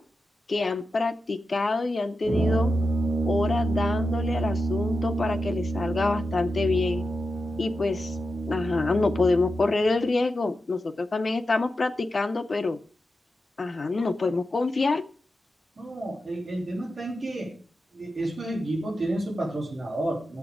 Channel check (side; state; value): both; normal; correlation 0.90